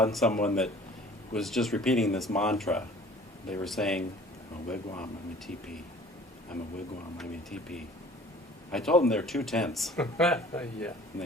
someone that was just repeating this mantra. They were saying, I'm a wigwam, I'm a teepee. I'm a wigwam, I'm a teepee. I told them they're too tense, Yeah. and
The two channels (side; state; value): both; normal; correlation 0.49